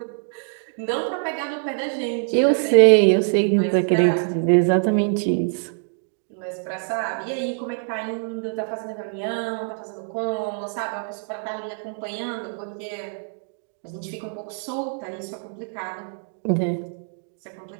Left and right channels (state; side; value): silent; left; digital silence